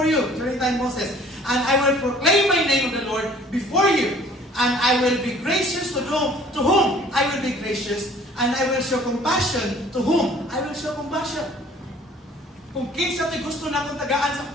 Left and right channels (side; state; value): both; normal; correlation 0.53